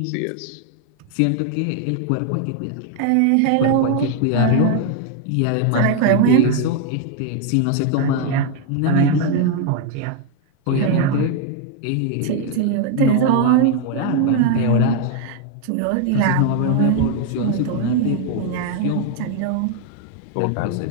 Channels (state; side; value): different; both; correlation 0.00